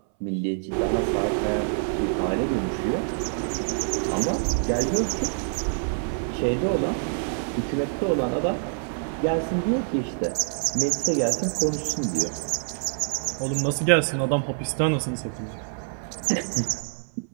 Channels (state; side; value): silent; left; 61 dB below the other